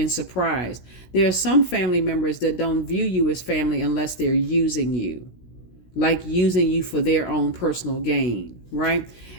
surprised. There are some family members that don't view you as family unless they're using you, like using you for their own personal gain, right?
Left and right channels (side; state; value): right; late; 16 ms